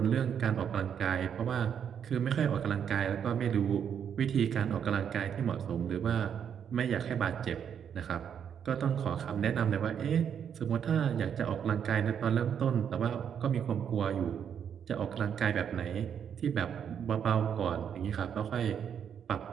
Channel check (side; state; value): left; quieter; 8.2 dB